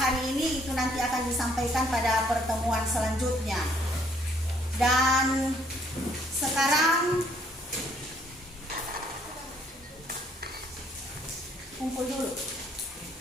ini itu nanti akan disampaikan pada pertemuan selanjutnya. Dan sekarang kumpul dulu.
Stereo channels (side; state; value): both; normal; correlation 0.65